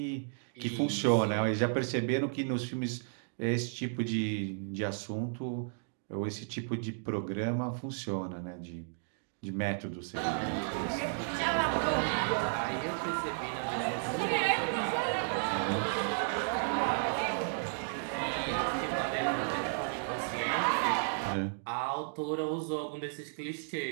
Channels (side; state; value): left; silent; digital silence